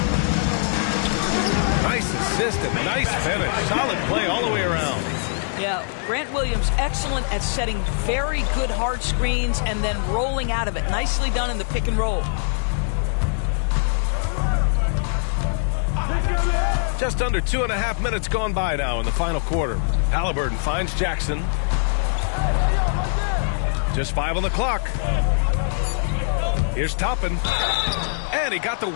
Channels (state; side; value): silent; right; digital silence